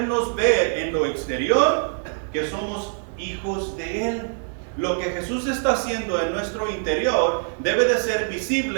ver en lo exterior que somos hijos de Él. Lo que Jesús está haciendo en nuestro interior debe de ser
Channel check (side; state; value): left; silent; 63 dB below the other